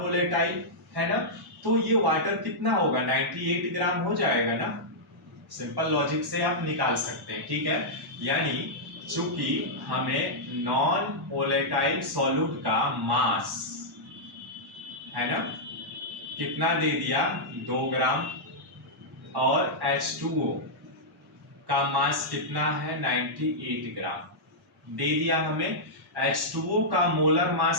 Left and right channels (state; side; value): normal; both; correlation -0.09